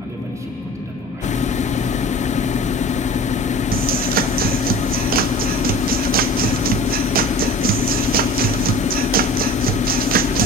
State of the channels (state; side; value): normal; both; correlation 0.41